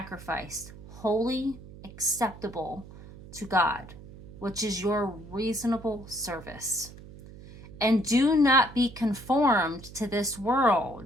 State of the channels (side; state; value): right; noise; hum, 17 dB below the sound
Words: holy, acceptable to God, which is your reasonable service. And do not be conformed to this